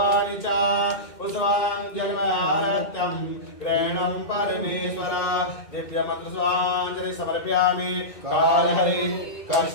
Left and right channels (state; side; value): late; right; 2.2 ms